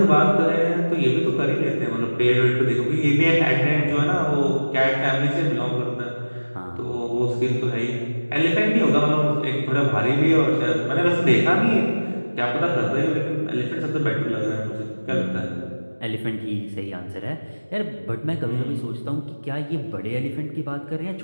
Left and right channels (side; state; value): both; inverted; correlation -1.00